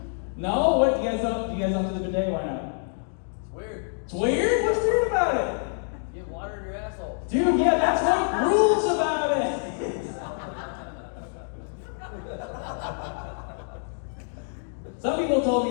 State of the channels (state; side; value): silent; right; digital silence